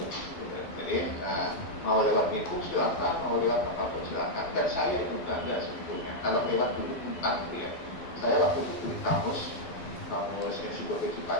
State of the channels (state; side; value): late; right; 12 ms